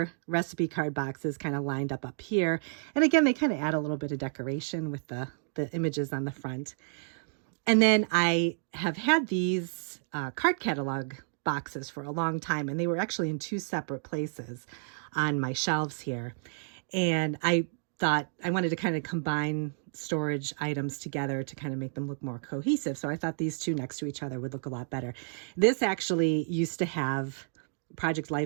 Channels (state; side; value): silent; left; digital silence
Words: recipe card boxes kind of lined up here. And again, they kind of add a little bit of decoration with the images on the front. And then I have had these card catalog boxes for a long time, and they were actually in two separate places on my shelves here. And I thought I wanted to kind of combine storage items together to kind of make them look more cohesive. So I thought these two next to each other would look a lot better. This actually used to have Project